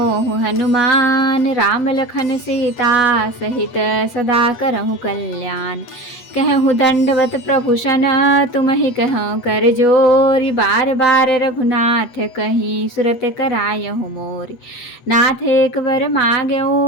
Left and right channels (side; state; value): right; late; 8.2 ms